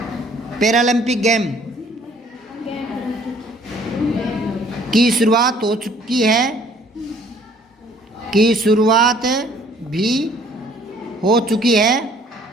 पैरालंपिक गेम। की शुरुआत हो चुकी है, की शुरुआत भी हो चुकी है।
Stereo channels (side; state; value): both; normal; correlation 0.58